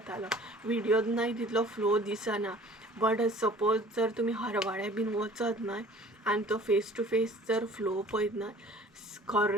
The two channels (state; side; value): normal; both; correlation 0.49